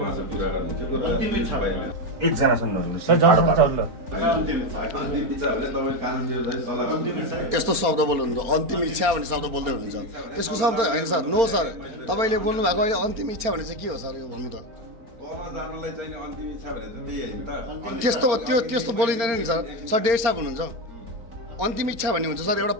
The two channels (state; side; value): late; left; 4.3 ms